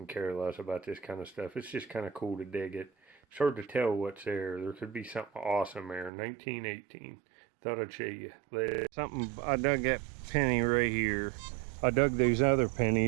care less about this kind of stuff. It's just kind of cool to dig it. It's hard to tell what's there. There could be something awesome there. 1918. Thought I'd show you later. Something, I dug that penny right here. I dug those other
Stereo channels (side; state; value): left; drops out; at 6.1 s